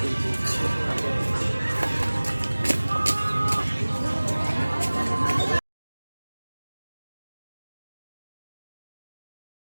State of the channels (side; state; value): both; inverted; correlation -1.00